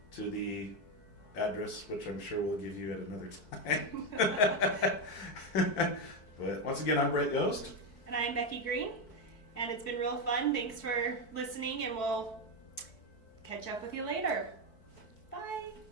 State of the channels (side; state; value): right; late; 4.6 ms